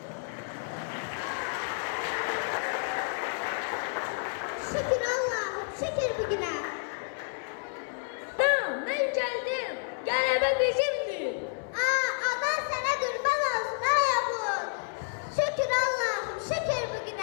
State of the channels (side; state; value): right; silent; 58 dB below the other